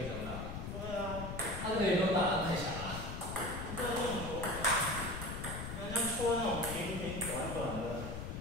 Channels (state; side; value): noise; left; rumble, 6 dB below the sound